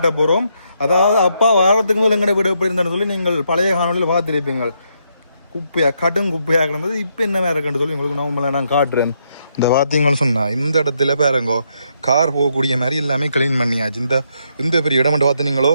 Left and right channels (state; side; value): inverted; both; correlation -0.77